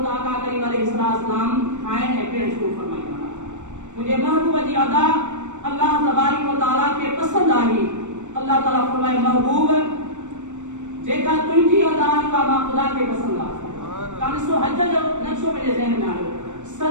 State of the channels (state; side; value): late; left; 0.85 ms